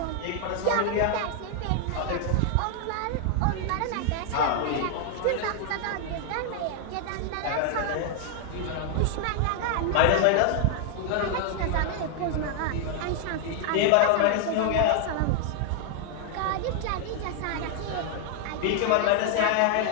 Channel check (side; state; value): both; different; correlation 0.00